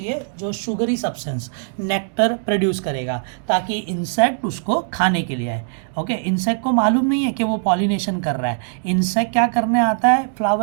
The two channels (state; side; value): silent; left; digital silence